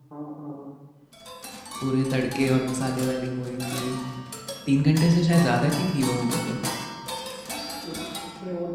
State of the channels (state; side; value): identical; both; correlation 1.00